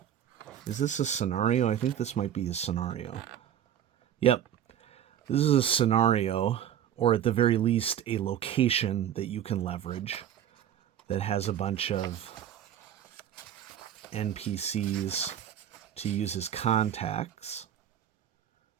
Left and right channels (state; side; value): quieter; left; 10.1 dB